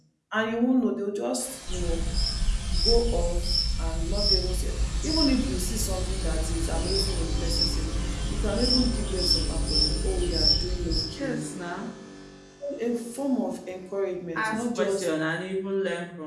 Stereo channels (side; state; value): both; identical; correlation 1.00